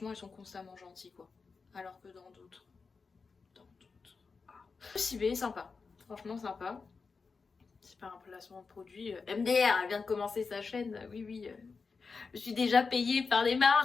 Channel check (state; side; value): quieter; right; 4.8 dB